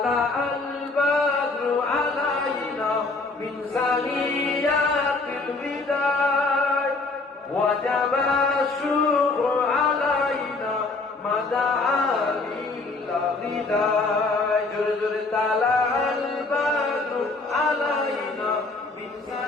আল বাদরু আলাইনা মিন সানিয়াতিল বিদায় ওয়াজাবা শুকরু আলাইনা মাদা আলিল বিদায়। জোরে জোরে তালা আল বাদরু আলাইনা মিন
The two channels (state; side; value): quieter; right; 3.6 dB